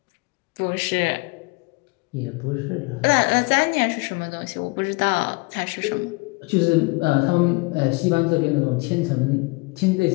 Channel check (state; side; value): quieter; right; 27.5 dB